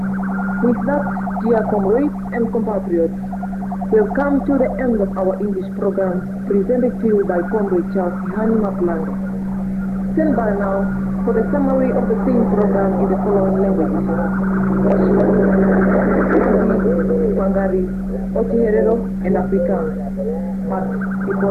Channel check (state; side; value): identical; both; correlation 1.00